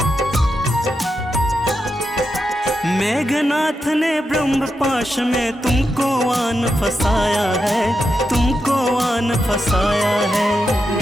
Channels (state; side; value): normal; both; correlation 0.86